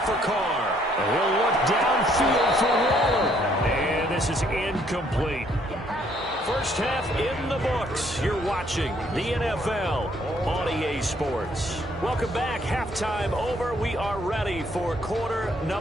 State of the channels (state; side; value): normal; both; correlation 0.66